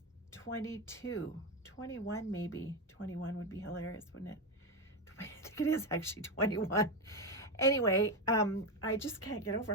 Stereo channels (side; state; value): both; normal; correlation 0.12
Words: 22, 21 maybe. 21 would be hilarious, wouldn't it? I think it is actually 21. Anyway, I just can't get over